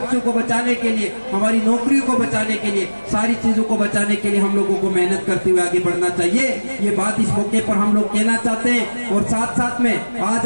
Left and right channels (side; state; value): both; inverted; correlation -1.00